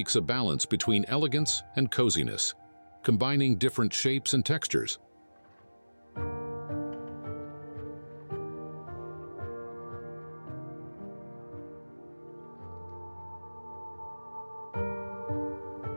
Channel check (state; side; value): inverted; both; correlation -1.00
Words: a balance between elegance and coziness, combining different shapes and textures.